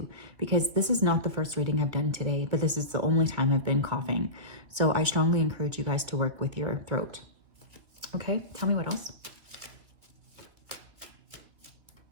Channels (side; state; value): left; late; 2.4 ms